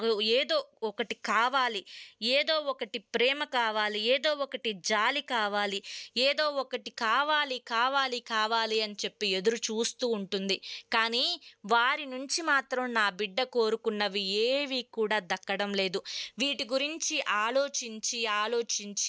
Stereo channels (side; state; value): both; identical; correlation 1.00